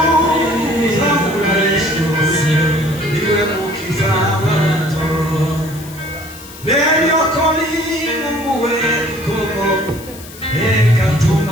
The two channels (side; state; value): left; noise; hiss, 17 dB below the sound